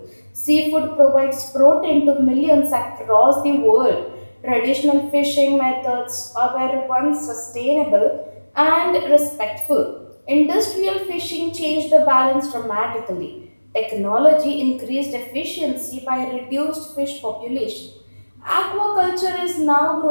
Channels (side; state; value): both; inverted; correlation -1.00